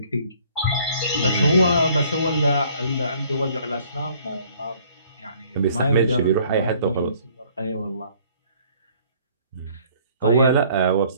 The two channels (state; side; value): inverted; both; correlation -0.58